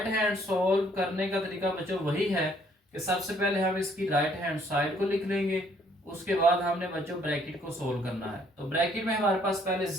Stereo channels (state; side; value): normal; both; correlation 0.64